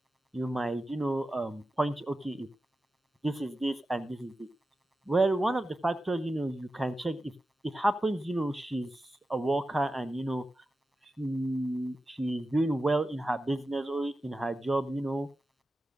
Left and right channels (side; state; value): both; normal; correlation 0.92